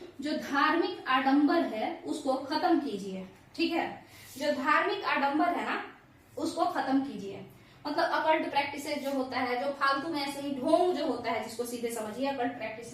जो धार्मिक आडंबर है उसको खत्म कीजिए। ठीक है, जो धार्मिक आडंबर है ना उसको खत्म कीजिए। मतलब अकल्ट प्रैक्टिसेस जो होता है, जो फालतू में ऐसे ही ढोंग जो होता है, जिसको सीधे समझिए अकल्ट प्रैक्टिस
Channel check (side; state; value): both; identical; correlation 1.00